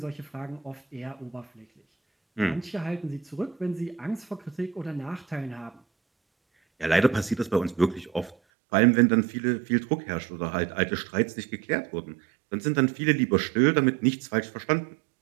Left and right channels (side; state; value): left; drops out; at 8.3 s